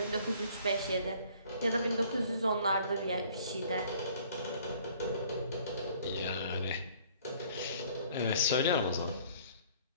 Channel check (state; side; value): inverted; both; correlation -0.56